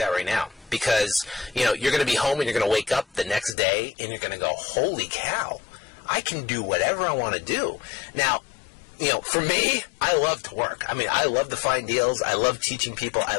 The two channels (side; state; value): right; drops out; at 3.6 s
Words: right now. because, you know, you're going to be home and you're going to wake up the next day and you're going to go, holy cow, I can do whatever I want to do. Now, you know, for me, I love to work. I mean, I love to find deals. I love teaching people. I